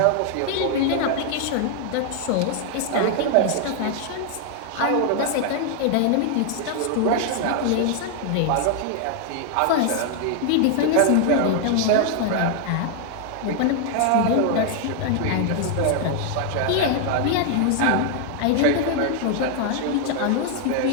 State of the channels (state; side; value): different; both; correlation 0.00